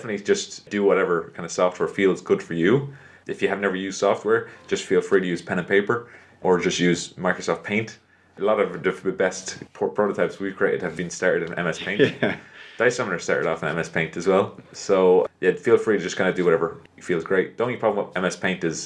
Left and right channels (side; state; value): both; identical; correlation 1.00